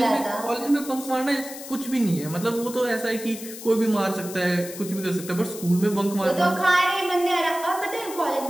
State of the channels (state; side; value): noise; left; hiss, 12 dB below the sound